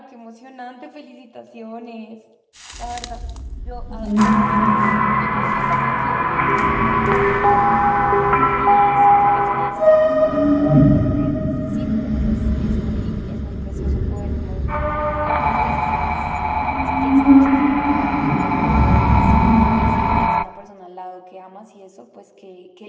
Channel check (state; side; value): identical; both; correlation 1.00